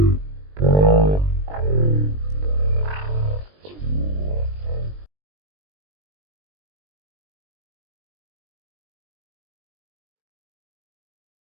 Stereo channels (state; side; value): late; left; 20 ms